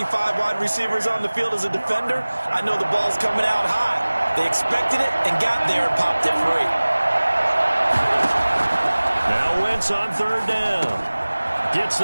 5 wide receivers on the field as a defender, I know the ball's coming out high. They expected it and got there and popped it free. Now Wentz on 3rd down. Gets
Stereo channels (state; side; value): inverted; both; correlation -1.00